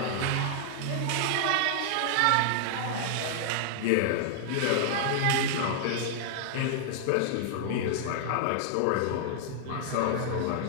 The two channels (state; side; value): different; both; correlation -0.01